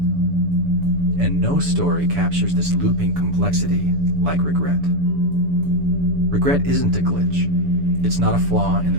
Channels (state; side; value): late; left; 6.9 ms